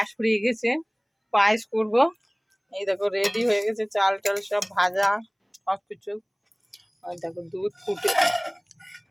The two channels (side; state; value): both; identical; correlation 1.00